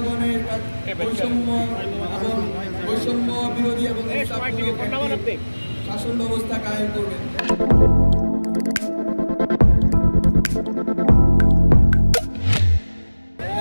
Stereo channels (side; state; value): both; inverted; correlation -1.00